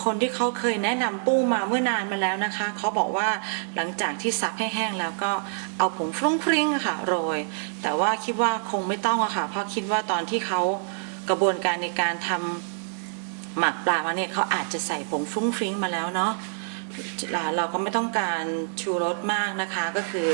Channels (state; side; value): silent; left; digital silence